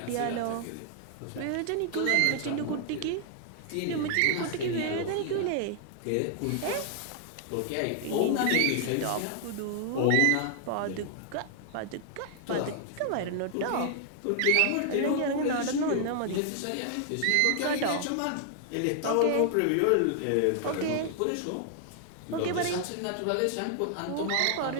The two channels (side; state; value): both; different; correlation 0.00